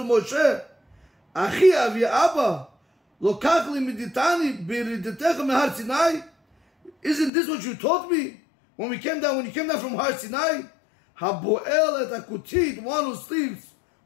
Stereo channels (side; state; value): right; drops out; at 7.3 s